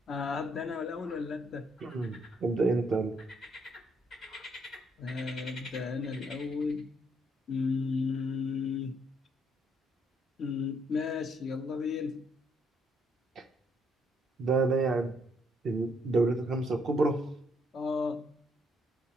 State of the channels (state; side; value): normal; both; correlation 0.71